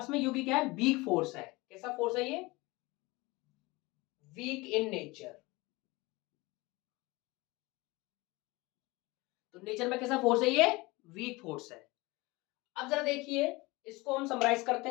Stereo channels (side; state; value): right; quieter; 23.0 dB